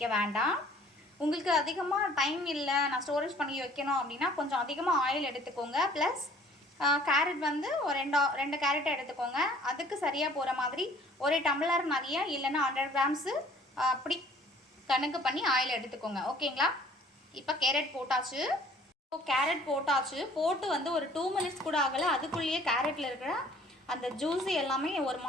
வேண்டாம். உங்களுக்கு அதிகமாக டைம் இல்லை, நான் ஸ்டோரேஜ் பண்ணி வைக்கணும் அப்படின்னா கொஞ்சம் அதிகமாக ஆயில் எடுத்துக்கோங்க. ப்ளஸ் கேரட் வந்து ஒரு 2 கேரட்டை எடுத்துக்கோங்க. அதுக்கு சரியாக போகிற மாதிரி ஒரு டம்ளர் நிறைய, இல்லைன்னா 100 கிராம்ஸு அப்படி கணக்கு பண்ணி ஆயில் எடுத்துக்கோங்க. ஓகேங்களா? இப்போ கேரட் போட்டாச்சு. கேரட் போட்டு வந்து ஒரு 2 மினிட்ஸ் கூட ஆகலை. அதுக்குள்ளேயே கேரட்டில் இருக்கிற அந்த ஜூஸு எல்லாமே ஒரு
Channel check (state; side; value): normal; both; correlation 0.55